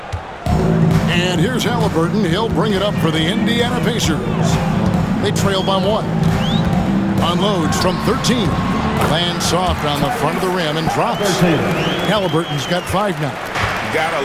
And here's Halliburton. He'll bring it up for the Indiana Pacers. They trail by 1. Unloads from 13. Lands soft on the front of the rim and drops. Halliburton's got 5 now. Gotta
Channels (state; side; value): identical; both; correlation 1.00